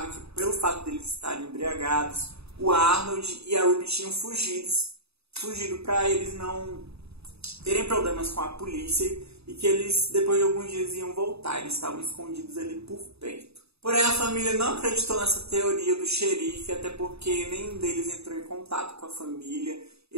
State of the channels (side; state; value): left; late; 0.79 ms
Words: que pelo fato deles estarem embriagados, o Arnold e a Ruby tinham fugido para eles não terem problemas com a polícia e que eles, depois de alguns dias, iam voltar. Eles estavam escondidos ali por perto. Porém, a família não acreditou nessa teoria do xerife, até porque nenhum deles entrou em contato com a família.